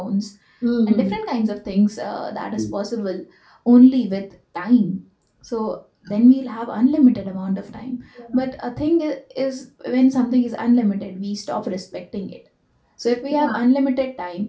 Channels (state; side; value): identical; both; correlation 1.00